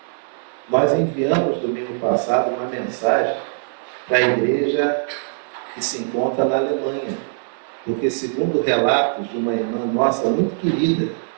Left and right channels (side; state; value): left; silent; digital silence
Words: Nós enviamos domingo passado uma mensagem para a igreja que se encontra na Alemanha. Porque, segundo relatos de uma irmã nossa muito querida,